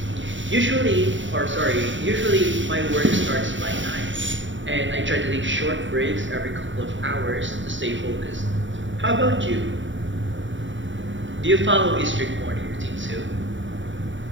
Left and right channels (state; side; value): late; left; 0.55 ms